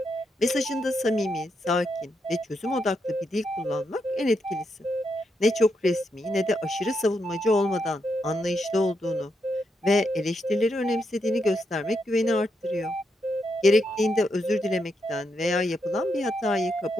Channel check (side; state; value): both; normal; correlation 0.82